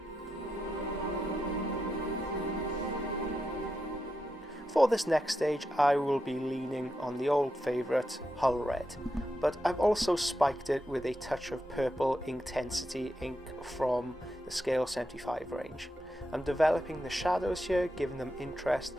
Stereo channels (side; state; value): both; normal; correlation 0.86